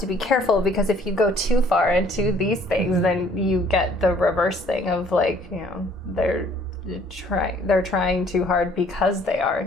be careful, because if you go too far into these things, then you get the reverse thing of like, you know, they're trying too hard because they are,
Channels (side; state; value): both; normal; correlation 0.58